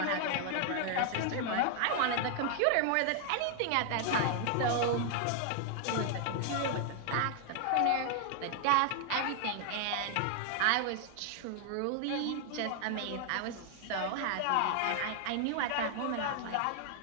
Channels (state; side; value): different; both; correlation 0.00